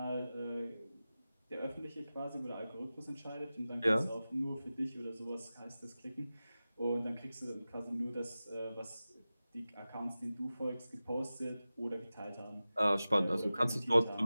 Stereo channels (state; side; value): inverted; both; correlation -0.96